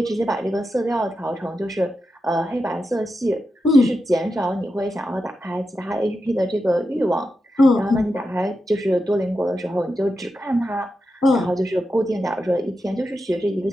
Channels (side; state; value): both; normal; correlation 0.89